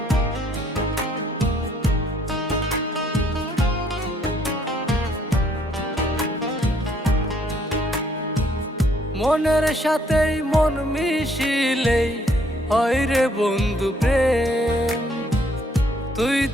মনের সাথেই মন মিশিলেই হয় রে বন্ধু প্রেম। তুই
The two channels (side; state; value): both; normal; correlation 0.66